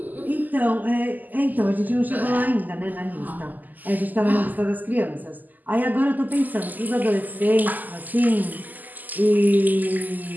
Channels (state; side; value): late; left; 0.084 ms